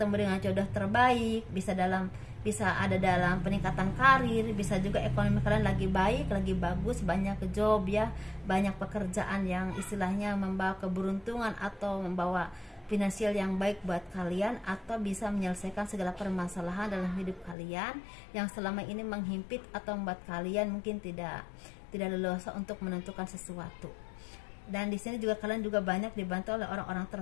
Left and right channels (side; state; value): right; drops out; at 17.6 s